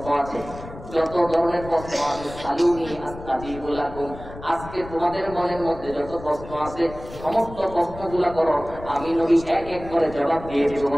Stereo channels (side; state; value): left; noise; rumble, 14 dB below the sound